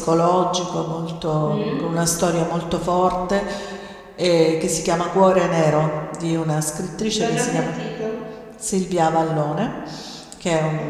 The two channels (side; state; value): both; identical; correlation 1.00